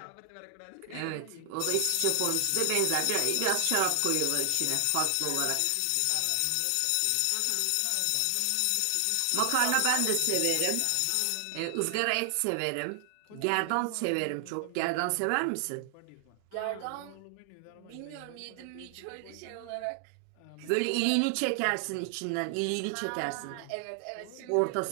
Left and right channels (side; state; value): both; different; correlation 0.00